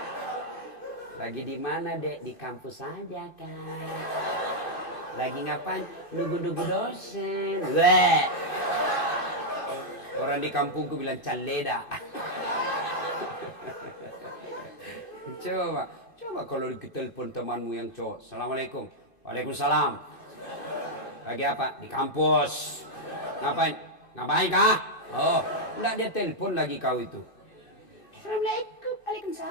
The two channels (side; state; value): right; late; 2.6 ms